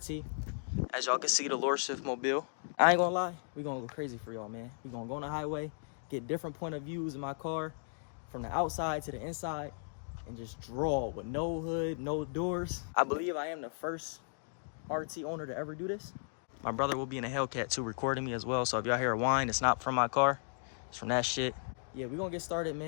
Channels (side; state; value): right; silent; digital silence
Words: As y'all can see, the Lord Shift mobile. I ain't gonna lie, we gonna go crazy for y'all, man. We gonna go on the highway, get different point of views in my car, from the outside to the inside, and just draw with no hood, no doors. I believe I am the first RT owner to ever do this. My brother will be in a Hellcat too, recording me as well. So if y'all hear a whine, it's not from my car. It's from that shit. Yeah, we're gonna get started,